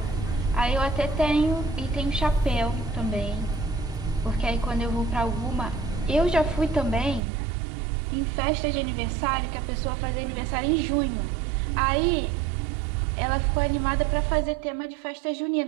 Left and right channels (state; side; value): drops out; left; at 7.2 s